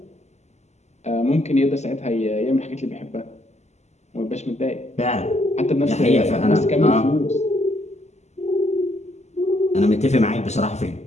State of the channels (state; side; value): late; right; 0.33 ms